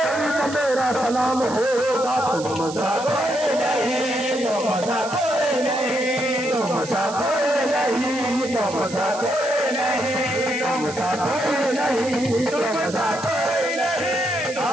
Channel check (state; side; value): noise; right; hiss, 13 dB below the sound